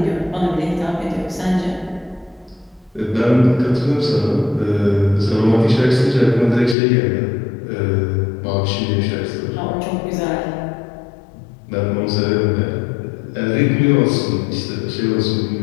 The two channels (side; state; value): right; drops out; at 6.8 s